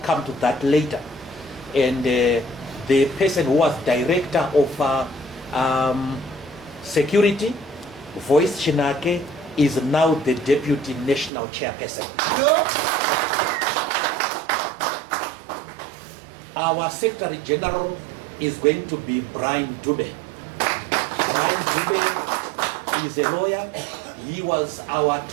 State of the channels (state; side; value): drops out; left; at 11.3 s